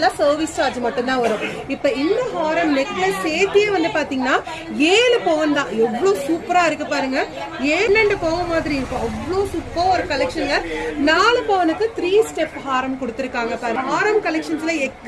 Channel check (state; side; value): identical; both; correlation 1.00